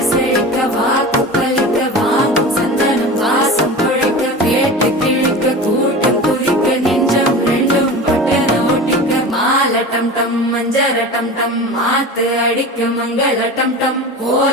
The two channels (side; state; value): both; normal; correlation 0.32